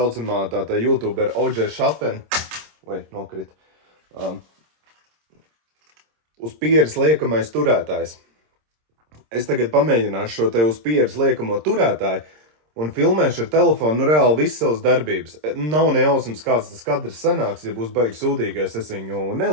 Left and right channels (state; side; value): late; left; 26 ms